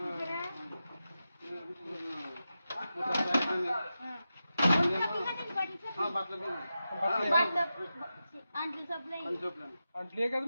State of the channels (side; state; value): both; inverted; correlation -0.91